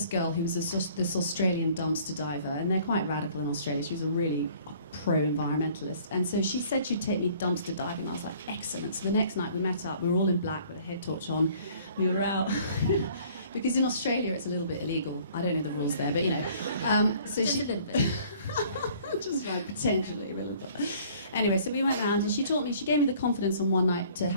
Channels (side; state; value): both; inverted; correlation -0.55